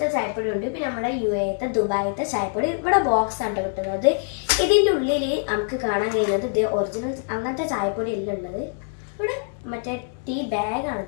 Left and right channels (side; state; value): right; silent; 60 dB below the other